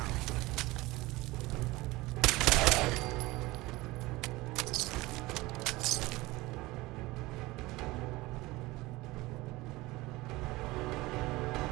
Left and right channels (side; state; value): left; quieter; 20.5 dB